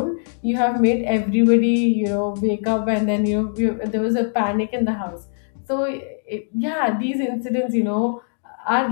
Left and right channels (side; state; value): right; silent; digital silence